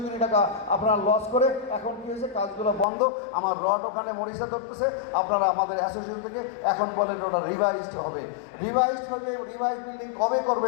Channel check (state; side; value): drops out; right; at 2.9 s